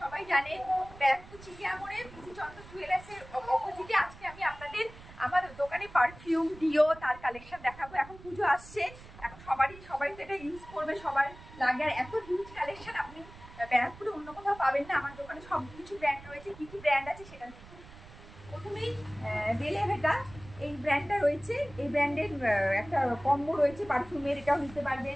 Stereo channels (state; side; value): noise; right; rumble, 18 dB below the sound